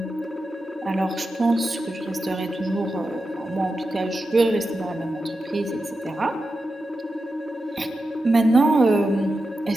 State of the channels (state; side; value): normal; both; correlation 0.90